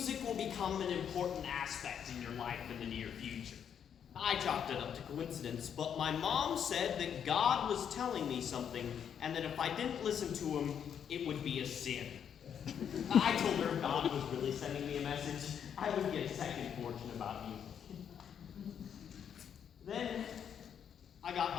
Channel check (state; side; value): quieter; right; 8.3 dB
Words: will become an important aspect in your life in the near future." I chalked it up to coincidence, but my mom said that God was telling me something, and that if I didn't listen to him, it would be a sin. I told her if God was really sending me a message, I would get a second fortune about music. Then I